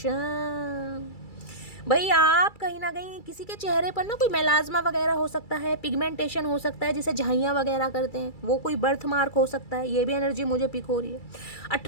भाई आप कहीं ना कहीं किसी के चेहरे पर ना कोई मेलाज्मा वगैरह हो सकता है, पिगमेंटेशन हो सकता है, जिसे झाइयाँ वगैरह करते हैं, वो कोई बर्थ मार्क हो सकता है। ये भी एनर्जी मुझे पिक हो रही है।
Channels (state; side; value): late; right; 2.3 ms